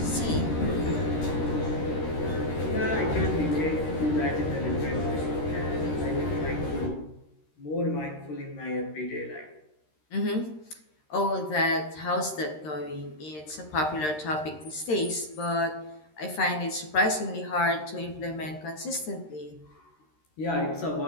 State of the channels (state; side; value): late; right; 13 ms